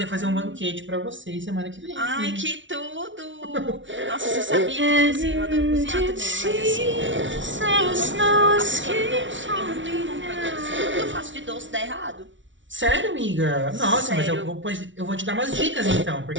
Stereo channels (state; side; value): late; left; 0.55 ms